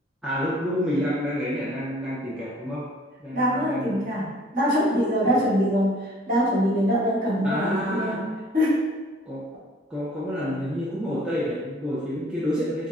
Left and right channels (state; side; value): normal; both; correlation 0.55